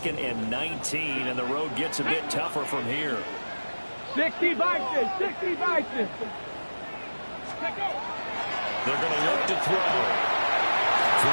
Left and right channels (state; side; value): inverted; both; correlation -1.00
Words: and 19, and the road gets a bit tougher from here. 60 Vikings, 60 Vikings. They're going to look to throw. Throw